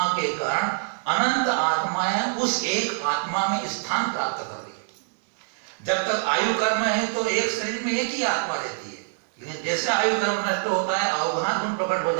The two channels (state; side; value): silent; left; digital silence